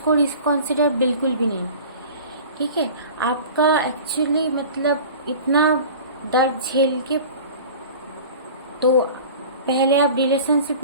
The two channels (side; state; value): both; inverted; correlation -0.40